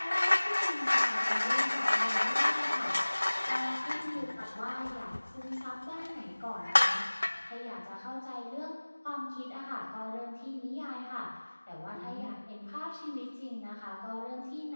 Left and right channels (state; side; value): inverted; both; correlation -1.00